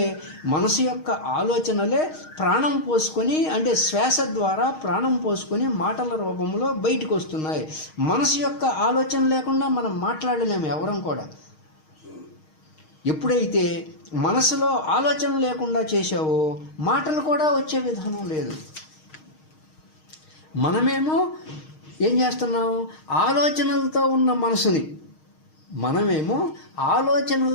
మనసు యొక్క ఆలోచనలే ప్రాణం పోసుకొని, అంటే శ్వాస ద్వారా ప్రాణం పోసుకొని మాటల రూపంలో బయటకు వస్తున్నాయి. మనసు యొక్క ఆలోచన లేకుండా మనం మాట్లాడలేము ఎవరం కూడా. ఎప్పుడైతే మనసులో ఆలోచన లేకుండా చేసావో మాటలు కూడా వచ్చే విధానం లేదు. మనమేమో ఏం చేస్తున్నాం, ఆలోచనలతో ఉన్న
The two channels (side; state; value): right; late; 6.4 ms